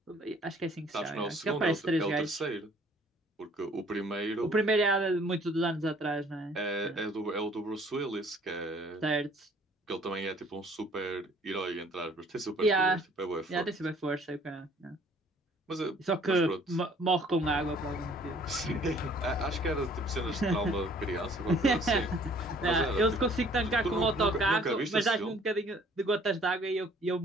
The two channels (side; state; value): both; normal; correlation 0.57